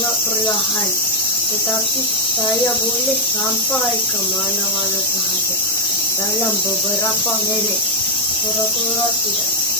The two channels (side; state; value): both; normal; correlation -0.06